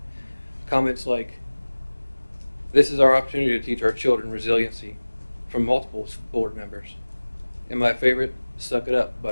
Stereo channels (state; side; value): inverted; both; correlation -1.00